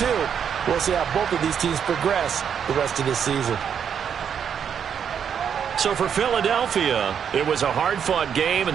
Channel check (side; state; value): left; quieter; 7.9 dB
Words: We'll see how both of these teams progress the rest of this season. So for Philadelphia, it was a hard-fought game, and